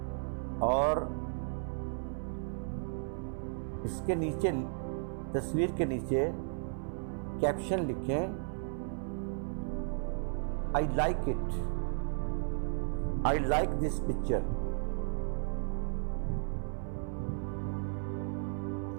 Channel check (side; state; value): left; silent; 55 dB below the other